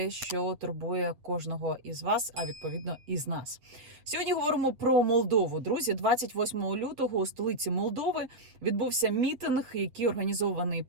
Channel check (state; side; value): late; left; 7.9 ms